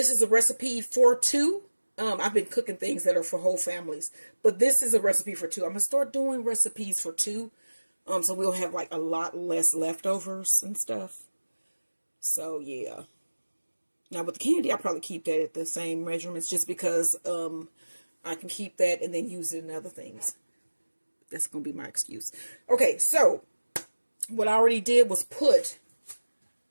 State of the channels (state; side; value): inverted; both; correlation -1.00